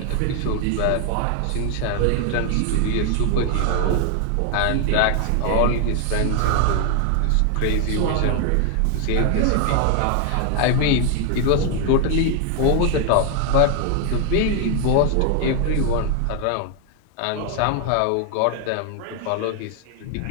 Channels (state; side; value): different; both; correlation 0.00